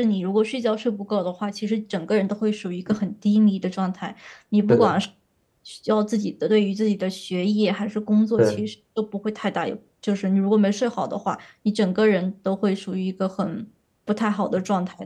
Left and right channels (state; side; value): identical; both; correlation 1.00